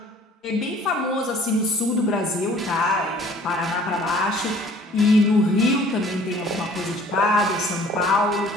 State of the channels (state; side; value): normal; both; correlation 0.53